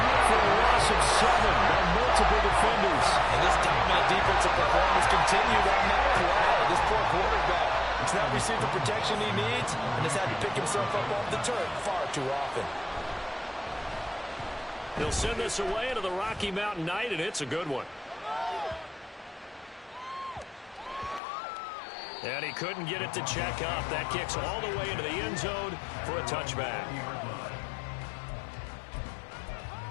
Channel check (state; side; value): drops out; right; at 21.2 s